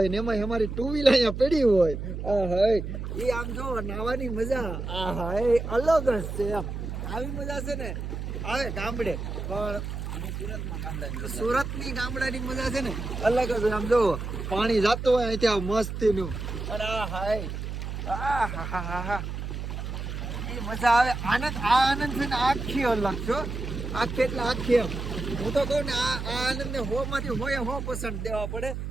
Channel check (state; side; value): noise; right; hum, 5 dB below the sound